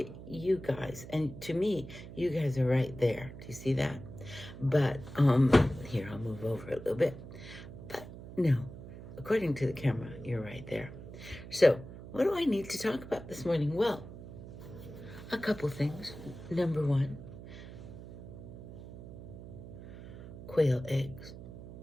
at you guys, and to me, you guys are right there. Do you see that? But here, I'll move over a little bit. But no, according to the camera, you're right there. So what do I need to talk about this morning? Well, a couple things. Number one, quail eggs.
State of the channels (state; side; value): noise; right; hum, 13 dB below the sound